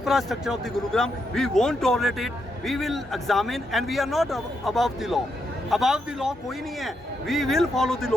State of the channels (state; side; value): normal; both; correlation 0.81